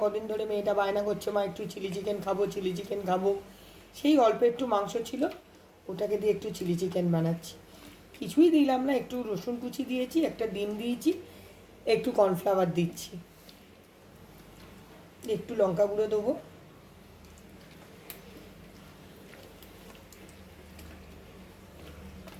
কদিন ধরে মেয়েটা বায়না করছে মা একটু চিলি চিকেন খাবো, চিলি চিকেন খাবো। সেই অল্প একটু মাংস ছিল, ওটাকে দিয়ে একটু চিলি চিকেন বানাচ্ছি। কিছুই দিলাম না, একটু রসুন কুচি দিয়েছি, একটা ডিম দিয়েছি, একটু কর্নফ্লাওয়ার দিচ্ছি, একটু লঙ্কা গুঁড়ো দেবো।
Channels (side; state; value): both; identical; correlation 1.00